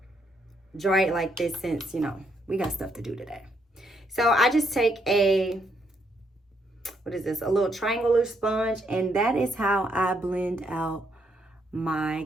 dry it like this since, you know, we got stuff to do today. So I just take a little triangular sponge, and that is how I blend out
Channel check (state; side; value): normal; both; correlation 0.74